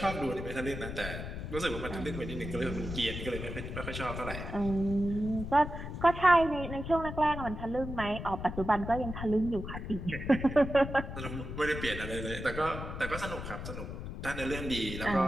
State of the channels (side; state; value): left; noise; rumble, 7 dB below the sound